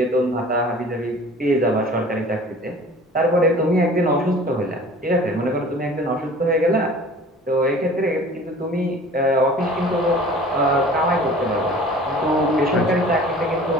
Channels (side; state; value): both; normal; correlation 0.45